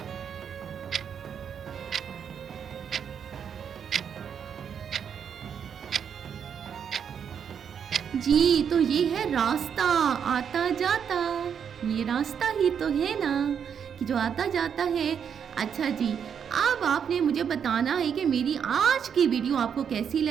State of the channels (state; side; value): quieter; left; 7.6 dB